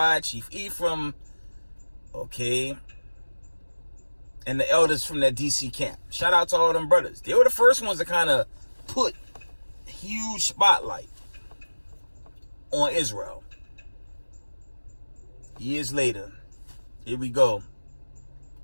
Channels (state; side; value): inverted; both; correlation -1.00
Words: Chief Ephraim. Okay. And the elders from that DC camp. Shout out to all them brothers. They were the first ones to kind of put a huge spotlight on Israel. Years later, here we go.